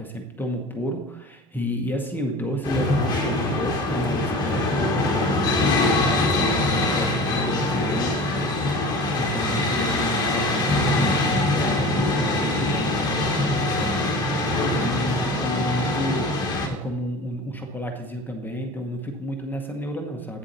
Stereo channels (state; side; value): normal; both; correlation 0.37